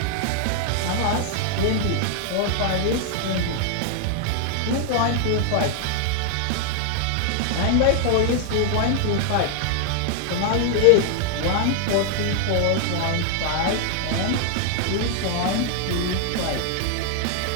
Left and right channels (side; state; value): both; different; correlation 0.00